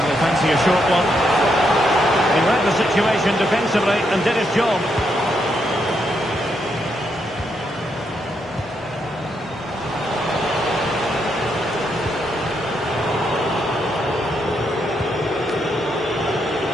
They fancy a short one. He read the situation defensively and did his job.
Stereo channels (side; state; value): both; normal; correlation 0.79